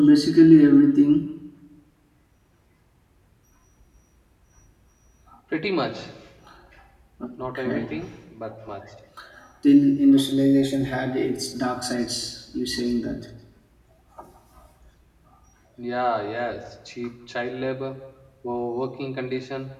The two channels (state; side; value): identical; both; correlation 1.00